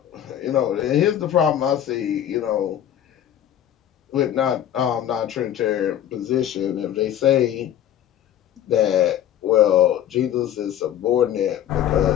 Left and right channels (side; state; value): right; quieter; 10.9 dB